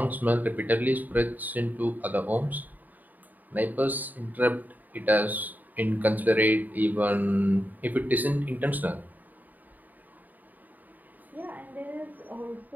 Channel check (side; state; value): left; late; 0.084 ms